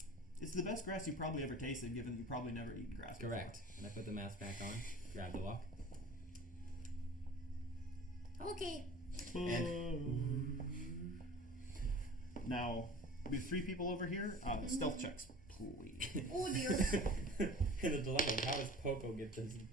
It's the best grass you probably ever tasted, given you probably never eaten grass before. Correct. And I put the mask back on. Grab the wok. Okay. Now, we have 3 people over here. Stealth checks, please. Oh dear. In the dilemma of how does Poco get this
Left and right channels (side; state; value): both; normal; correlation 0.42